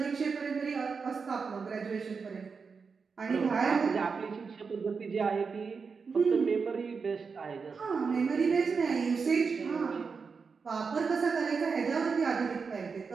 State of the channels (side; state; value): left; quieter; 5.2 dB